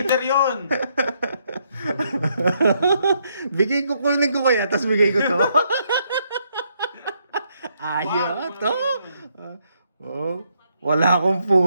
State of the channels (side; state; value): both; inverted; correlation -0.74